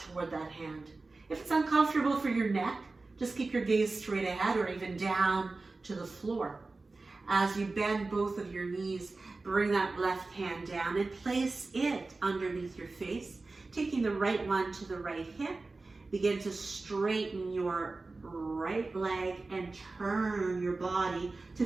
toward that hand. If it's uncomfortable for your neck, just keep your gaze straight ahead or even down to the floor. As you bend both of your knees, bring that left hand down and place it underneath your face. Taking the right one to the right hip, begin to straighten your right leg and turn your body to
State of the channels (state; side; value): quieter; left; 3.5 dB